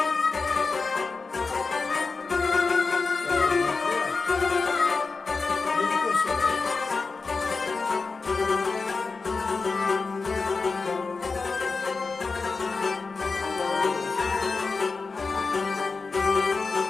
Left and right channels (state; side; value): quieter; right; 4.3 dB